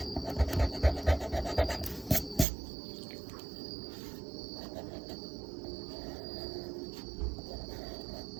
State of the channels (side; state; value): left; drops out; at 2.5 s